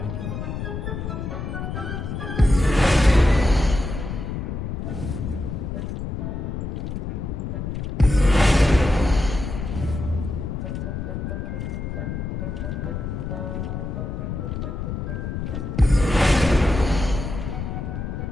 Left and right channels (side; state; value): left; noise; rumble, 4 dB below the sound